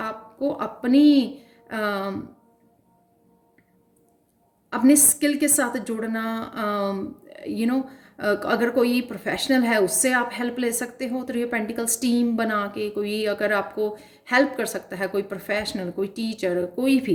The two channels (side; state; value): both; identical; correlation 1.00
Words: अपने स्किल के साथ जुड़ना, यू नो अगर कोई प्रोफेशनल है उससे आप हेल्प ले सकते हो। थ्री ऑफ पेंटिकल्स टीम बना के, कोई अगर आपको हेल्प कर सकता है, कोई प्रोफेशनल, कोई टीचर, कोई